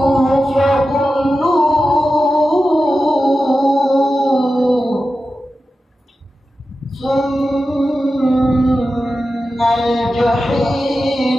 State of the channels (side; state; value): both; normal; correlation 0.92